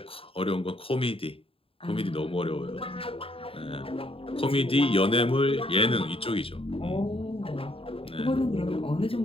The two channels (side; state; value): right; late; 0.27 ms